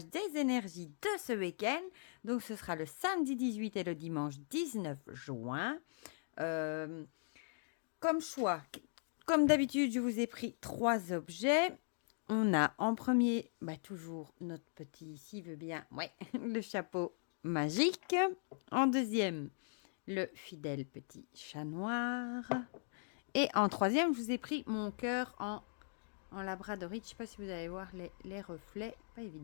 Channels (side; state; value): right; silent; digital silence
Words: des énergies de ce week-end. Donc ce sera le samedi 18 et le dimanche 19 juin. Comme choix, comme d'habitude, je vous ai pris 3 objets. On a en premier, toujours notre petit, s'il veut bien, ouais, le chapeau magique. En deuxième, le fidèle petit chat noir. Et en troisième, je vous ai pris mon cœur en labradorite. Je ne sais pas si vous allez voir les reflets. Pas